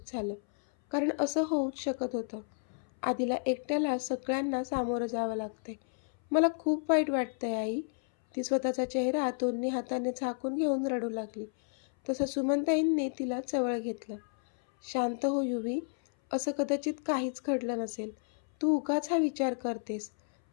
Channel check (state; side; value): silent; right; 57 dB below the other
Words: झालं, कारण असं होऊच शकत होतं. आधीला एकट्याला सगळ्यांना सामोरं जावं लागतंय. मला खूप वाईट वाटतंय आई, ती स्वतःचा चेहरा दोन्ही हाताने झाकून घेऊन रडू लागली. तसं सुमनताईंनी तिला जवळ घेतलं. शांत हो युवी, असं कदाचित काहीच घडलं नसेल, तू उगाच हा विचार करतेस.